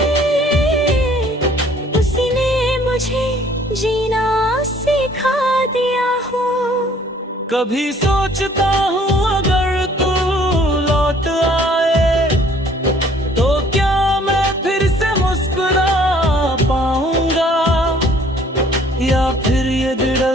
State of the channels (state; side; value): normal; both; correlation 0.58